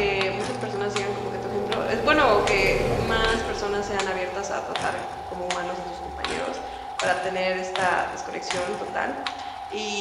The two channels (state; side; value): identical; both; correlation 1.00